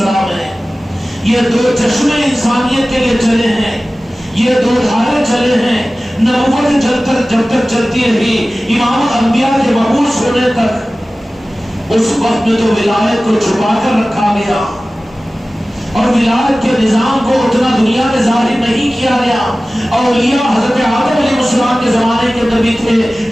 ہیں۔ یہ دو چشمے انسانیت کے لیے چلے ہیں، یہ دو دھارے چلے ہیں، نبوت جب تک چلتی رہی امامت انبیاء کے مبعوث ہونے تک، اس وقت میں تو ولایت کو چھپا کر رکھا گیا اور ولایت کے نظام کو اتنا دنیا میں ظاہر نہیں کیا گیا۔ اولیاء حضرت آدم علیہ السلام کے زمانے کے اندر بھی تھے،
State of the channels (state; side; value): normal; both; correlation 0.97